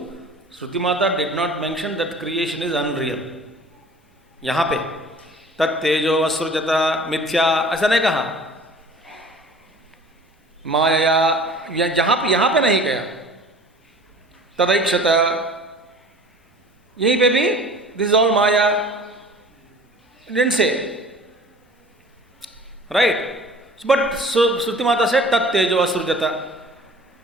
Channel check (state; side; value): normal; both; correlation 0.45